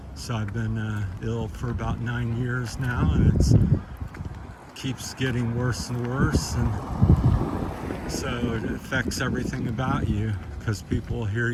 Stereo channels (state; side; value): identical; both; correlation 1.00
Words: So I've been ill for about 9 years now, and it keeps getting worse and worse, and so it affects everything about you, because people hear